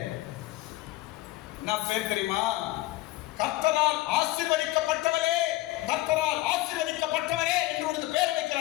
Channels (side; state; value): right; quieter; 17.8 dB